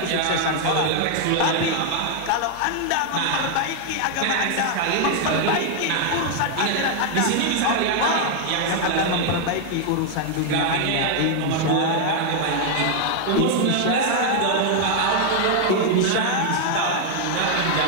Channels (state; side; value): different; both; correlation 0.00